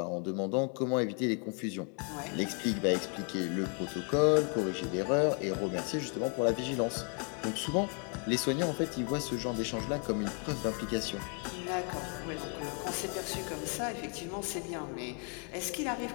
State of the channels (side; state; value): right; quieter; 39.2 dB